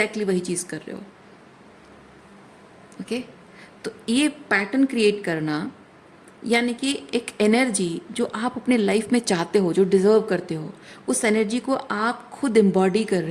वही चीज़ कर रहे हो। ओके, तो ये पैटर्न क्रिएट करना, यानी कि एक एनर्जी जो आप अपने लाइफ में चाहते हो, जो डिजर्व करते हो, उस एनर्जी को आप खुद एम्बॉडी कर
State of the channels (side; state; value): both; identical; correlation 1.00